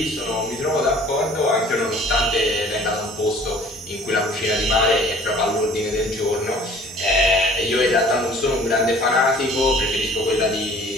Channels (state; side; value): normal; both; correlation 0.51